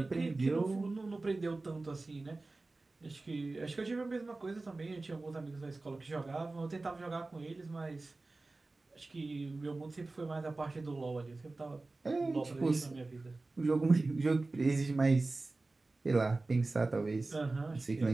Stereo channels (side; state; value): left; quieter; 3.3 dB